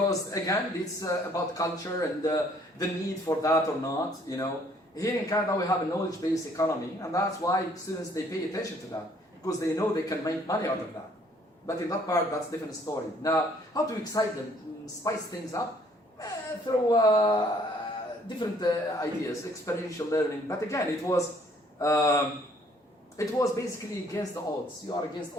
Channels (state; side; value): normal; both; correlation 0.62